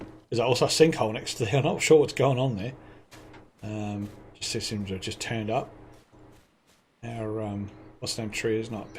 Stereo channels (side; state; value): both; identical; correlation 1.00